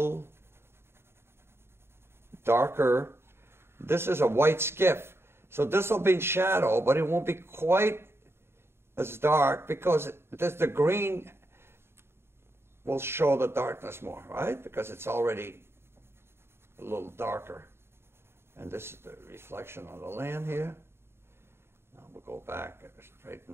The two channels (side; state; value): left; late; 0.12 ms